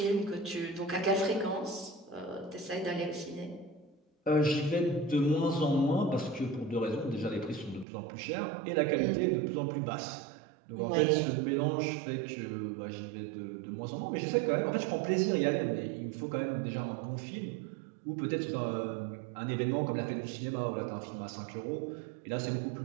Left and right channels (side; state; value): left; drops out; at 7.9 s